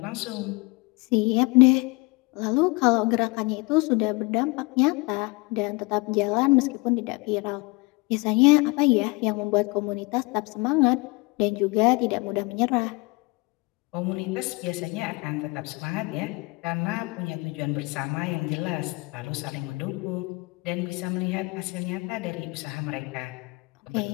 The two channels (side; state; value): right; quieter; 26.2 dB